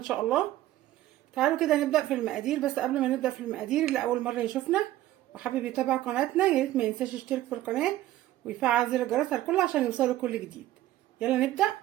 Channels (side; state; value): left; quieter; 14.6 dB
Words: شاء الله. تعالوا كده نبدا في المقادير، بس قبل ما نبدا في المقادير اللي اول مره يشوفنا وحابب يتابع قناتنا يا ريت ما ينساش يشترك في القناه ويفعل زر الجرس على الكل عشان يوصله كل جديد. يلا نبدا